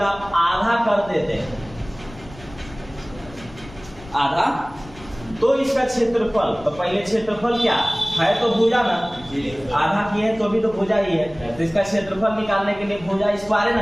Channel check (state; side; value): noise; left; rumble, 19 dB below the sound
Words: आधा कर देते हैं, आधा, तो इसका क्षेत्रफल, तो पहले क्षेत्रफल क्या है, तो भुजा ना, आधा की है तो भी तो भुजा ही है। तो इसका क्षेत्रफल निकालने के लिए भुजा स्क्वायर